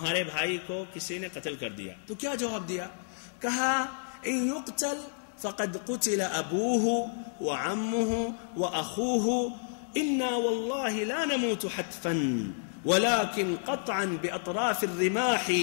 بھائی کو کسی نے قتل کر دیا، تو کیا جواب دیا؟ کہا ان یقتل فقد قتل ابوہ وعمہ واخوہ انا واللہ لا نموت حتفا ولكن قطعا باطراف الرماح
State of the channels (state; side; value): silent; right; digital silence